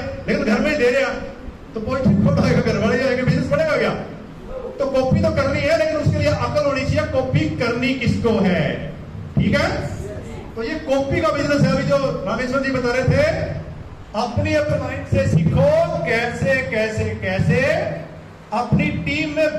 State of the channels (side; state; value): both; identical; correlation 1.00